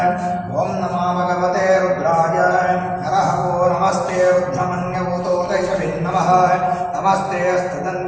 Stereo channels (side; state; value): both; identical; correlation 1.00